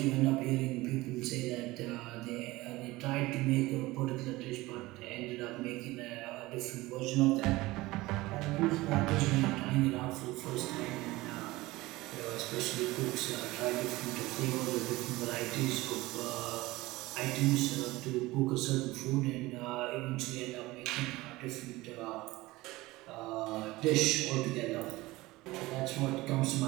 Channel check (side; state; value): left; quieter; 19.8 dB